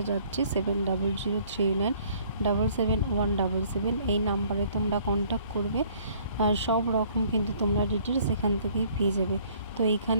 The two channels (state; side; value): inverted; both; correlation -0.59